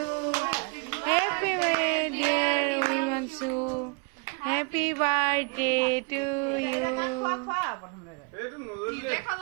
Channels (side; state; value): left; quieter; 35.1 dB